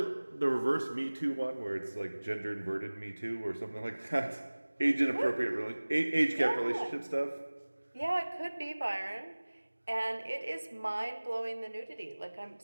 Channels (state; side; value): inverted; both; correlation -1.00